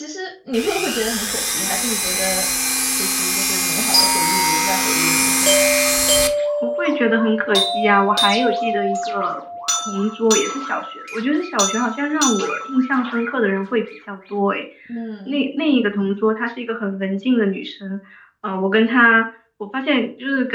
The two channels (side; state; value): both; identical; correlation 1.00